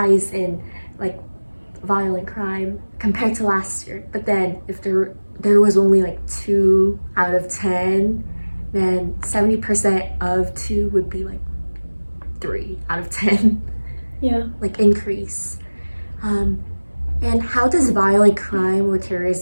in like violent crime compared to last year. But then if there was only like 2 out of 10, then 70% of 2 would be like 3 out of 10. Yeah. Like increase. And how does violent crime or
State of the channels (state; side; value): inverted; both; correlation -1.00